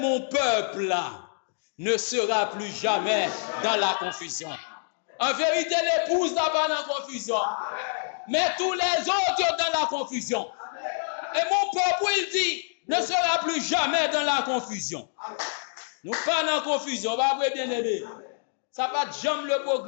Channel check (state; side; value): silent; right; digital silence